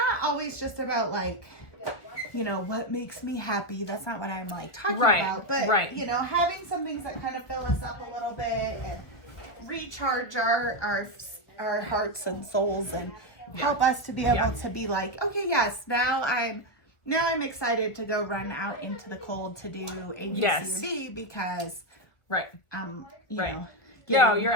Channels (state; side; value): late; right; 1.5 ms